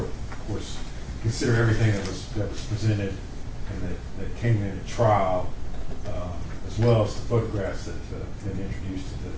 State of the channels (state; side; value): identical; both; correlation 1.00